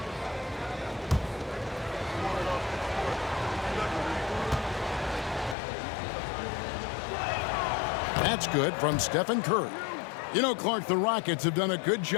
That's good from Stephen Curry. You know, Clark, the Rockets have done a good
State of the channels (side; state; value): right; drops out; at 5.6 s